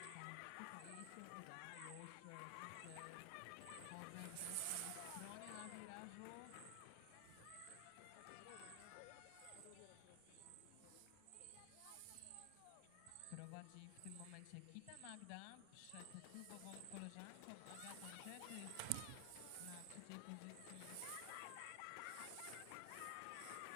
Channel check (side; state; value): both; different; correlation 0.00